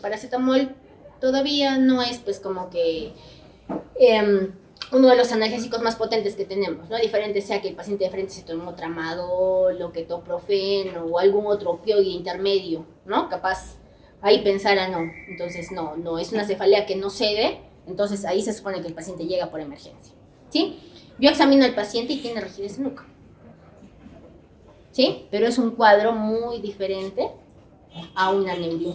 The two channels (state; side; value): identical; both; correlation 1.00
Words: todavía no es pues como que uno de los analgésicos más potentes que tenemos, ¿no? Diferente sea que el paciente de frente se tomó tramadol o ketoprofeno o algún otro opioide intermedio, ¿no? Capaz ahí pensara no. Entonces no, es una cefalea que no cede, entonces ahí se supone que el paciente llega por emergencia, ¿sí? Yo examino al paciente y tiene rigidez de nuca, ¿sí? Pero es un cuadro muy diferente a una